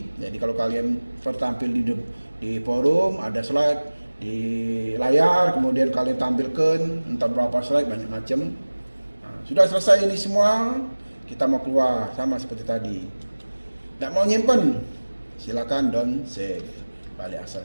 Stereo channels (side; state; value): both; inverted; correlation -1.00